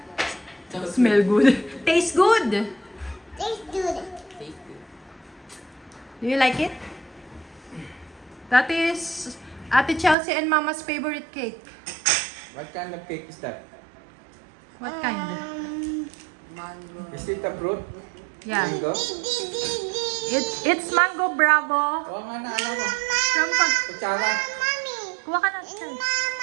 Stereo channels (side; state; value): left; drops out; at 10.2 s